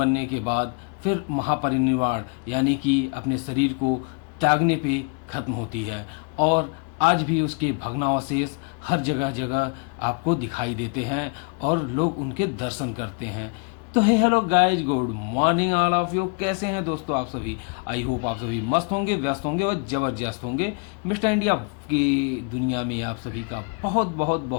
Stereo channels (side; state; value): right; quieter; 35.5 dB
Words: के बाद फिर महापरिनिर्वाण यानी कि अपने शरीर को त्यागने पे खत्म होती है। और आज भी उसके भग्नावशेष हर जगह जगह आपको दिखाई देते हैं और लोग उनके दर्शन करते हैं। तो hey hello guys, good morning all of you. कैसे हैं दोस्तों आप सभी? आई होप आप सभी मस्त होंगे, व्यस्त होंगे और जबरदस्त होंगे। मिस्टर इंडिया की दुनिया में आप सभी का बहुत बहुत